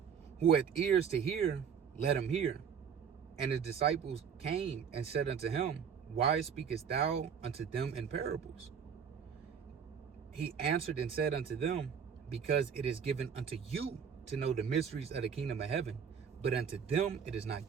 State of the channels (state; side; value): quieter; left; 7.2 dB